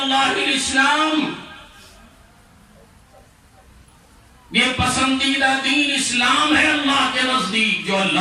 الاسلام، یہ پسندیدہ دین اسلام ہے اللہ کے نزدیک، جو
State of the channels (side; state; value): both; identical; correlation 1.00